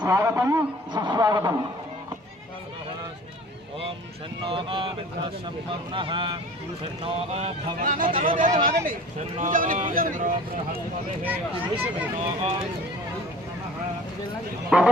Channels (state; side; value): normal; both; correlation 0.45